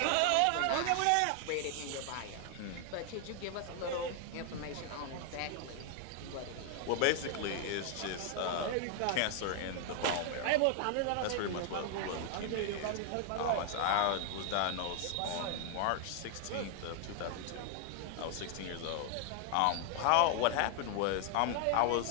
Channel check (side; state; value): both; different; correlation 0.00